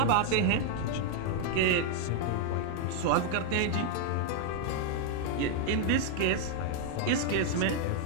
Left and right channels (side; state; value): both; different; correlation 0.00